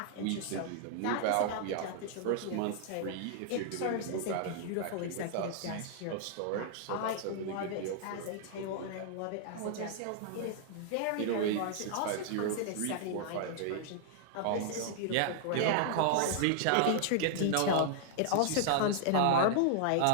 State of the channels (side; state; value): both; different; correlation -0.01